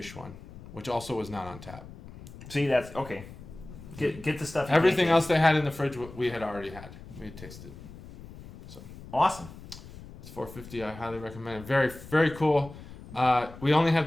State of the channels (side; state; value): left; noise; rumble, 16 dB below the sound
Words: one, which also was not on tap. See, that's okay. Get the stuff. Everything else they had in the fridge we had already had. We had tasted. So awesome. It's $4.50. I highly recommend it. Very, very cool. We only have